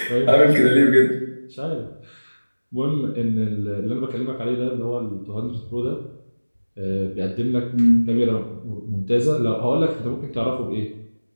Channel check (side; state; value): both; inverted; correlation -1.00